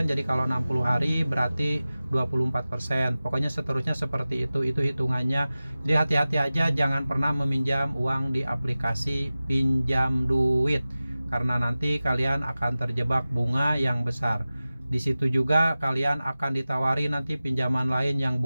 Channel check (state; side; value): inverted; both; correlation -0.96